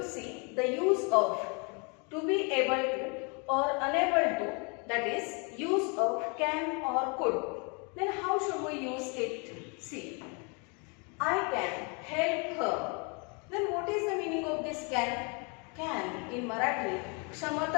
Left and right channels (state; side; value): quieter; right; 33.8 dB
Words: see the use of to be able to or unable to, that is use of can or could. Then how should we use it? See, I can help her. Then what is the meaning of this can? Can in Marathi